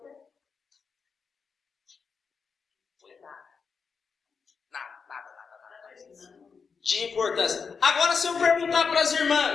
De importância. Agora, se eu perguntar para as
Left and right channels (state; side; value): quieter; right; 5.5 dB